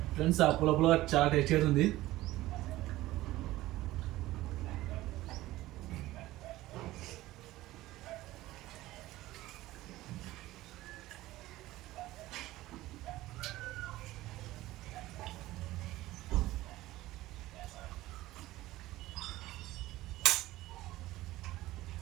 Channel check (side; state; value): left; quieter; 16.9 dB